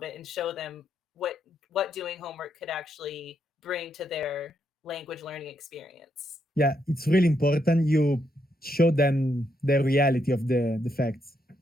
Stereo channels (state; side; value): normal; both; correlation 0.78